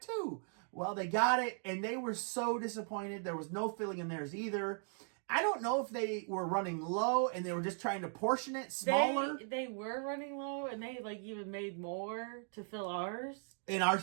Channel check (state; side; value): silent; left; 52 dB below the other